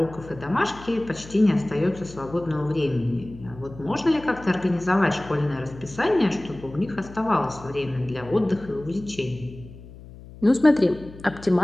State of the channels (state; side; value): noise; left; hum, 17 dB below the sound